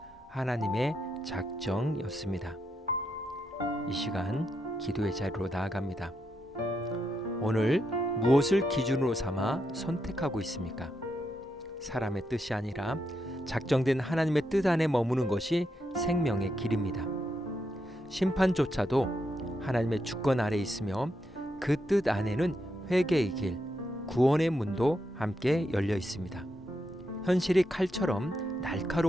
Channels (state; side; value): normal; both; correlation 0.82